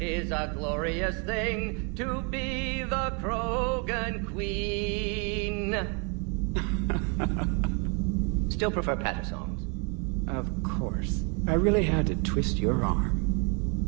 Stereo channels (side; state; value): left; quieter; 35.1 dB